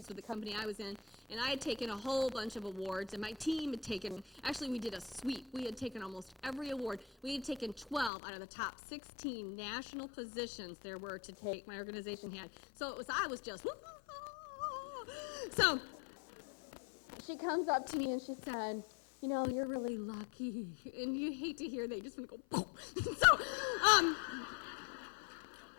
with the company I was in. And I had taken a whole bunch of awards. And my team had taken, actually we did a sweep. We had taken almost every award. We had taken 12 out of the top 16 national positions there were to take, my organization had. So I was just, so she comes up to me and she said, you know, you're really lucky. And you hate to hear that. You just want to go, boom. So,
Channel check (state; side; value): drops out; right; at 8.1 s